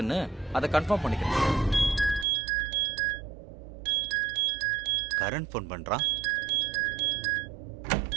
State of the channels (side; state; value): left; drops out; at 2.2 s